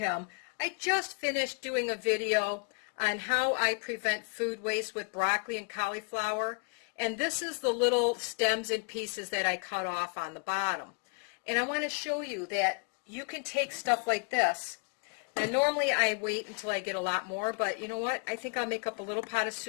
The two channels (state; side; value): quieter; right; 37.8 dB